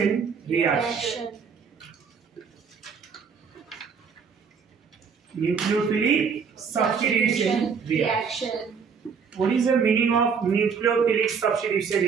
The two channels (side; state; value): left; quieter; 6.0 dB